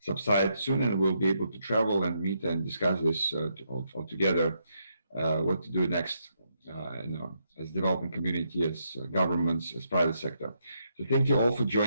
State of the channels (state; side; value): inverted; both; correlation -0.78